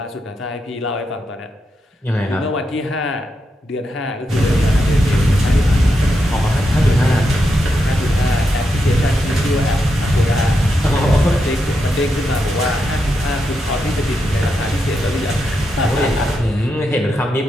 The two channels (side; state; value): both; normal; correlation 0.85